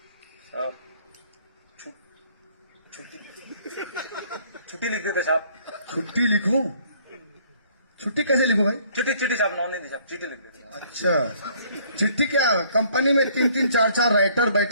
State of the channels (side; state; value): both; inverted; correlation -0.61